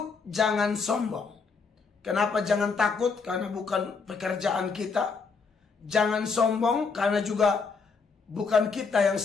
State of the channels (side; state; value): right; quieter; 4.9 dB